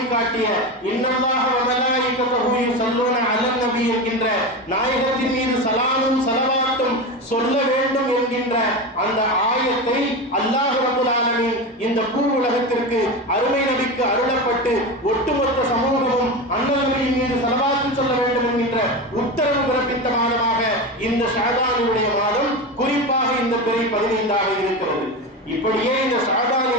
காட்டிய இன்னல்லாஹ வ மலாயிகத்துஹு யுஸல்லூன அலன் நபி என்கின்ற நாயகத்தின் மீது சலாமும் ஸலவாத்தும் சொல்ல வேண்டும் என்கின்ற அந்த ஆயத்தை அல்லாஹ் ரப்பல் ஆலமீன் இந்த பூ உலகத்திற்கு அருமை நபிக்கு அருளப்பட்டு ஒட்டுமொத்த சமூகமும் அண்ணல் நபியின் மீது ஸலவாத்து சொல்ல வேண்டும் என்கின்ற உத்தரவு பிறப்பித்த மாதமாக இந்த ஷஅபானுடைய மாதம், குறிப்பாக இந்த பிறை 15ஆக இருக்கிறது. இப்படியே இந்த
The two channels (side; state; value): both; normal; correlation 0.22